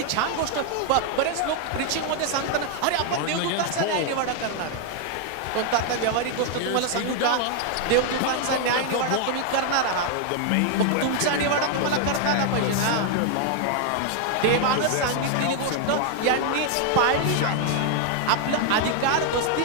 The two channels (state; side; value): different; both; correlation 0.00